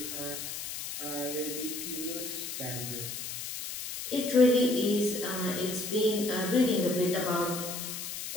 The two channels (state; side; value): noise; left; hiss, 6 dB below the sound